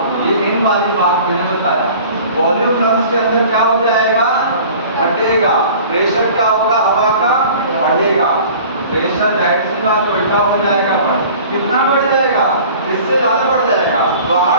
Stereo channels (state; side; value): inverted; both; correlation -0.45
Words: ये इन वाली बात मैंने बताया। वॉल्यूम लंग्स के अंदर क्या हो जाएगा? घटेगा। प्रेशर क्या होगा? हवा का बढ़ेगा। प्रेशर राइट सी बात उल्टा हो जाएगा, बढ़ कितना बढ़ जाएगा? इससे ज्यादा बढ़ जाएगा।